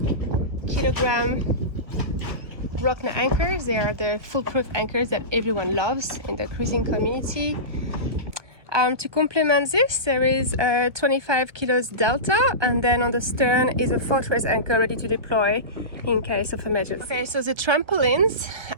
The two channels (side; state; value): left; late; 1.2 ms